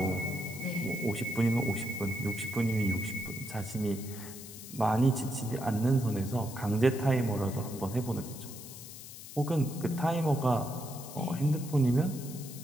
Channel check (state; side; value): noise; left; hiss, 13 dB below the sound